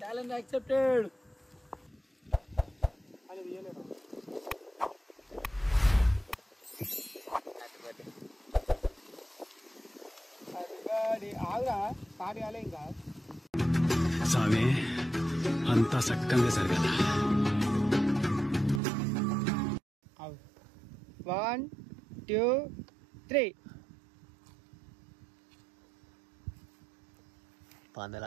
challenge accepted. ఆగురా, స్టార్ట్ కాలే ఇంకా. స్వామి అంతా చక్కగా జరగాల. 1 2 3.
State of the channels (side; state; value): left; drops out; at 18.8 s